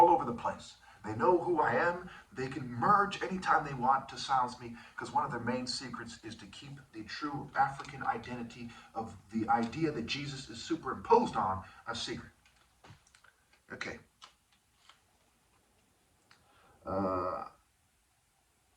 over the place. They know who I am. They can merge anytime they want to silence me, because one of their main secrets is to keep the true African identity of the idea that Jesus is superimposed on a secret. Okay.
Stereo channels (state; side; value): identical; both; correlation 1.00